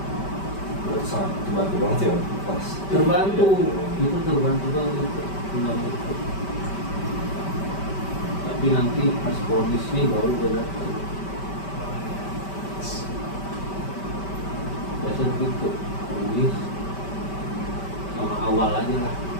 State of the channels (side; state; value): right; late; 5.2 ms